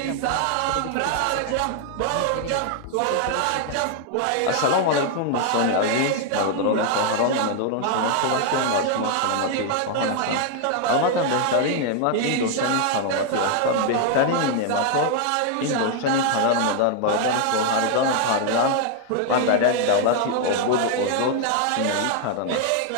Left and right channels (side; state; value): both; different; correlation 0.00